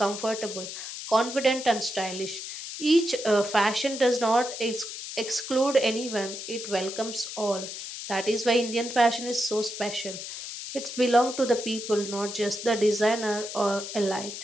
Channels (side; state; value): left; noise; hiss, 8 dB below the sound